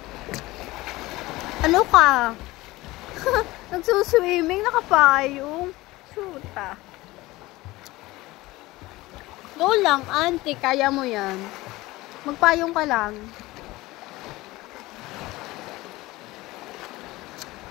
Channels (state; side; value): quieter; right; 19.4 dB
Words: Ano ka? Nagsuswimming, nakapayong. Shoota. Go lang, auntie. Kaya mo yan. Magpayong ka lang.